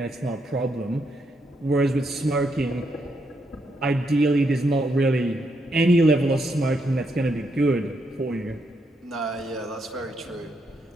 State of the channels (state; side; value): normal; both; correlation 0.79